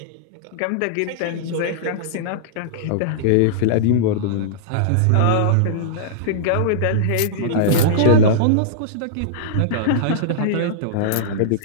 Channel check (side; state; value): both; different; correlation -0.02